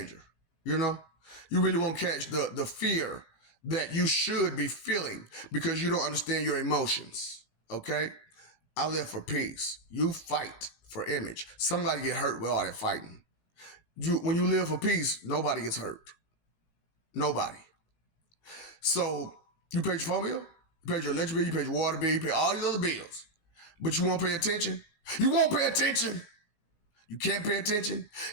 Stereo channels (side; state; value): right; late; 18 ms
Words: You really won't catch the fear that you should be feeling because you don't understand your emotions. Okay? I live for peace. You fight for image. Somebody get hurt with all that fighting. When you live for peace, nobody gets hurt. Nobody. So you paid your phone bill, you paid your electric bill, you paid your water bill, you pay all these other bills, but you won't pay attention. You won't pay attention. You can't pay attention.